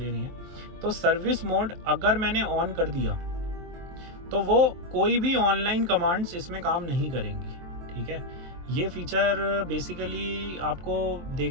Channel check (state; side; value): late; left; 23 ms